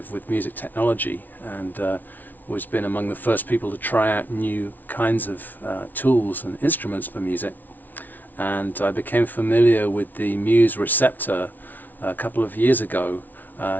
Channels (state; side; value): late; right; 0.083 ms